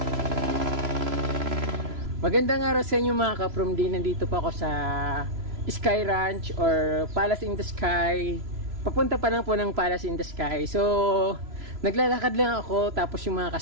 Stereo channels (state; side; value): late; left; 3.0 ms